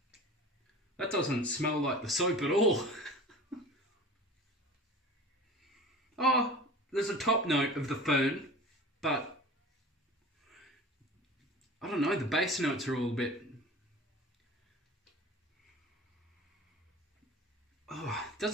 That doesn't smell like the soap at all. Oh, there's a top note of the Fern, but I don't know, the base notes are all a bit... Oh, it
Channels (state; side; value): normal; both; correlation 0.39